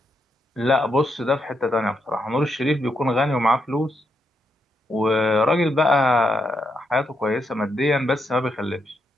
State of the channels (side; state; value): both; normal; correlation 0.80